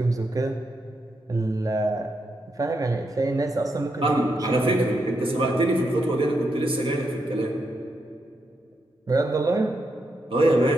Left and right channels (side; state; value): both; normal; correlation 0.82